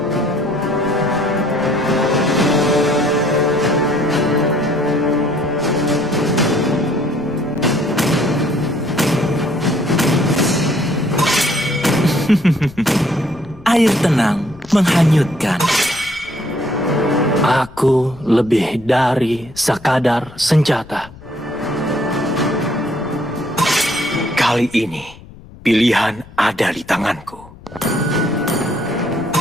air tenang menghanyutkan. Aku lebih dari sekadar senjata. Kali ini, pilihan ada di tanganku.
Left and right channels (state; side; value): noise; left; rumble, 20 dB below the sound